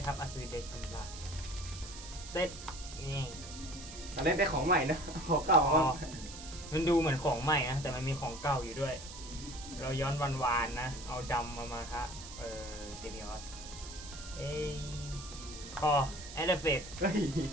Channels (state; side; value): noise; right; hiss, 13 dB below the sound